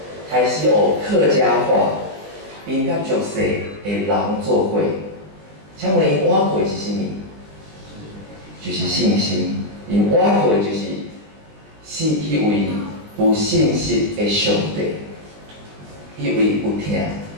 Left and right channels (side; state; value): left; late; 20 ms